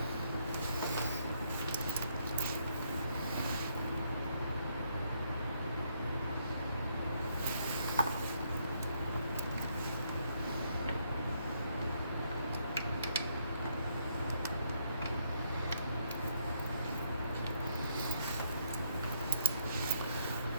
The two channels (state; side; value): inverted; both; correlation -0.72